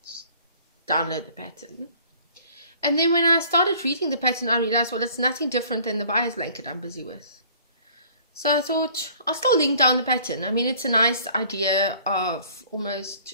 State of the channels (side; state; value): both; inverted; correlation -0.54